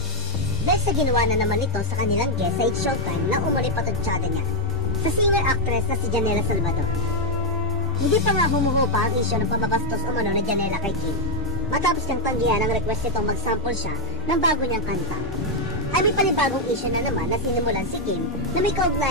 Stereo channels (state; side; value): normal; both; correlation -0.05